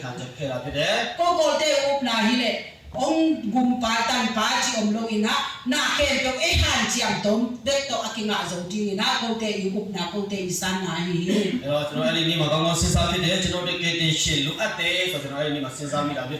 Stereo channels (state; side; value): identical; both; correlation 1.00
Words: ခံချက်ခဲ့တာဖြစ်တယ် ko ko te up na hi le ong gum pa tan pa chi om lo ina na ke to e han chi am tom de to akinga zo ti na ko te i up na ko te san na hi အဲ့တော့ကျွန်တော်အဲ့ဒီနေ့မှာကောင်းကောင်းစဉ်းစားဖြစ်တယ်ကျွန်တော်တို့ကေတင်ရှင်လိုအပ်တယ်ဆိုတော့ကျွန်တော်အဲ့ဒီနေ့မှာစဉ်းစားမိတာဖြစ်